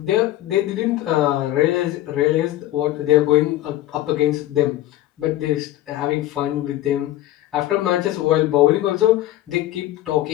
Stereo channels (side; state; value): right; quieter; 14.6 dB